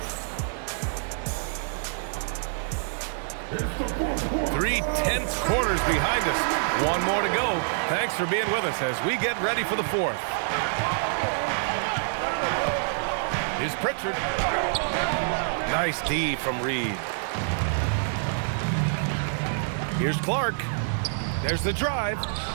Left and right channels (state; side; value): silent; left; digital silence